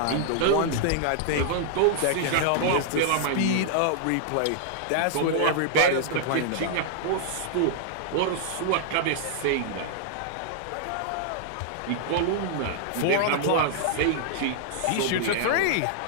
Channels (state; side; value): different; both; correlation -0.01